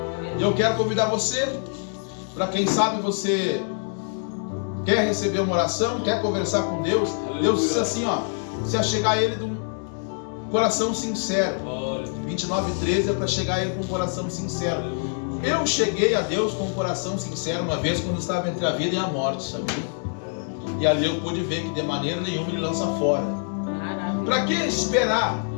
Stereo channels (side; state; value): right; silent; 62 dB below the other